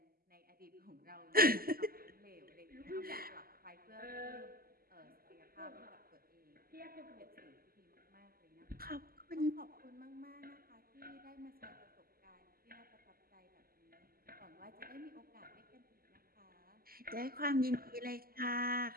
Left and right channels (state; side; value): late; left; 0.43 ms